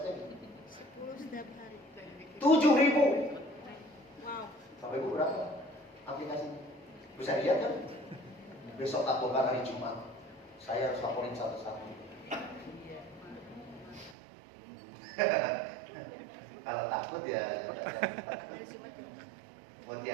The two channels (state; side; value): drops out; left; at 14.2 s